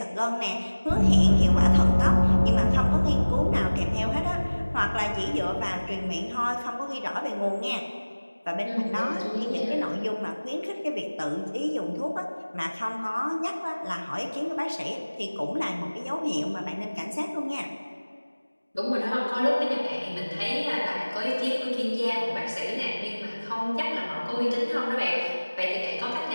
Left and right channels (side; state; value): both; inverted; correlation -1.00